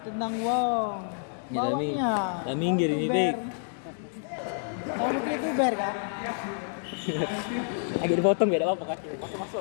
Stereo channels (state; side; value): silent; right; digital silence